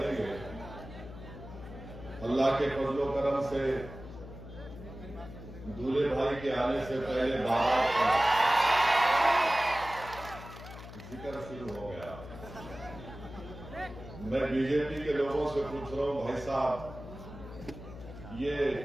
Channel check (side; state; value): left; noise; hum, 13 dB below the sound